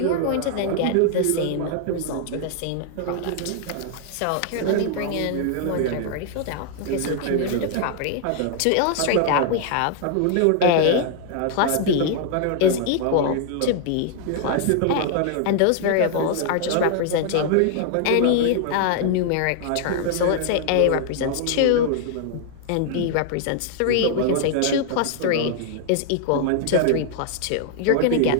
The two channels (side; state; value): both; different; correlation 0.00